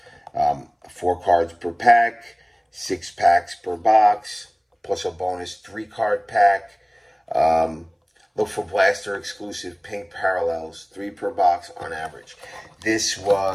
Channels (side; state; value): both; identical; correlation 1.00